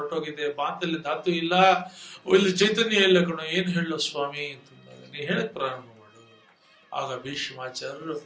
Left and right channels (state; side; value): identical; both; correlation 1.00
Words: ಮಾತಲ್ಲಿ ಧಾತು ಇಲ್ಲ, ಇಲ್ಲಿ ಚೈತನ್ಯ ಇಲ್ಲ ಕಣೋ, ಏನ್ ಹೇಳೋ ಸ್ವಾಮಿ ಅಂತಂದಾಗ ನೀ ಹೇಳಕ್ ಪ್ರಾರಂಭ ಮಾಡು. ಆಗ ಭೀಷ್ಮಾಚಾರ್ಯರು